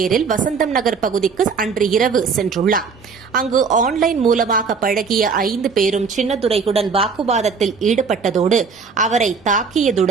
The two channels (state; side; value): quieter; left; 5.4 dB